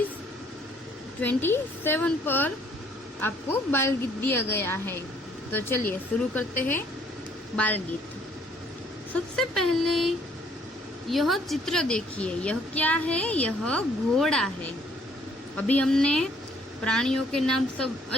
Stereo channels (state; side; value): normal; both; correlation 0.63